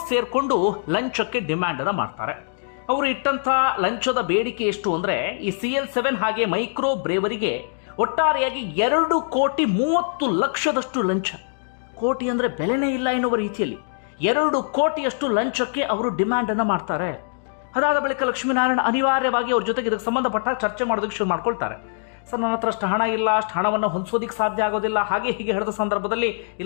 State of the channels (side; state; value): right; silent; digital silence